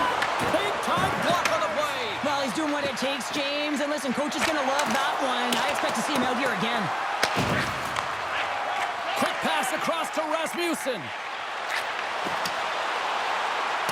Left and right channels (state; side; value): identical; both; correlation 1.00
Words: Big time block on the play. Well, he's doing what it takes, James. And listen, coach is going to love that one. I expect to see him out here again. Quick pass across to Rasmussen.